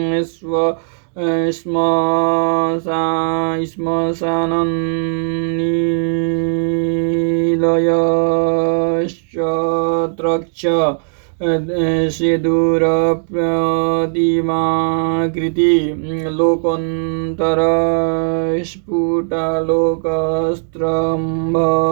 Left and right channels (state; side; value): silent; left; digital silence